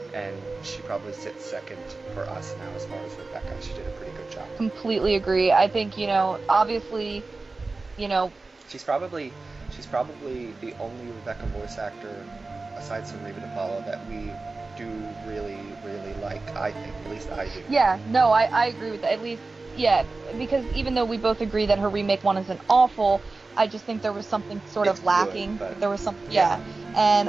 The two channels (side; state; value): left; quieter; 3.6 dB